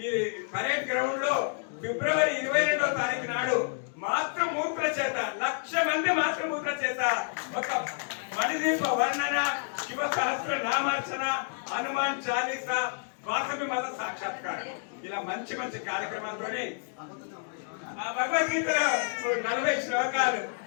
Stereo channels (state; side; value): silent; right; digital silence